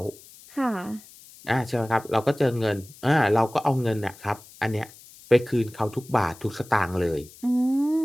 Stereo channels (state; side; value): noise; left; hiss, 22 dB below the sound